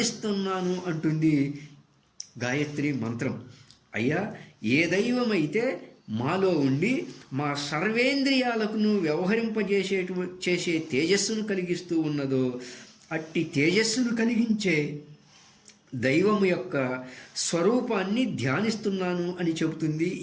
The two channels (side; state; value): both; identical; correlation 1.00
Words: అంటుంది గాయత్రి మంత్రం. అయ్యా, ఏ దైవమైతే మాలో ఉండి మా సర్వేంద్రియాలకు చేసే తేజస్సును కలిగిస్తూ ఉన్నదో అట్టి తేజస్సును కలిగించే దైవము యొక్క స్వరూపాన్ని ధ్యానిస్తున్నాను అని చెబుతుంది